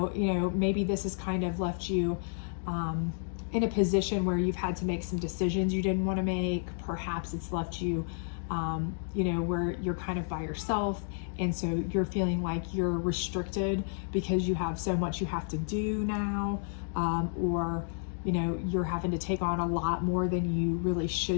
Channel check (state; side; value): silent; right; digital silence